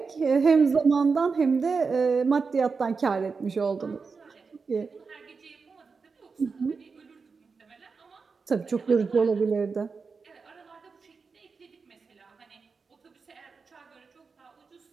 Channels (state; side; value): quieter; left; 4.9 dB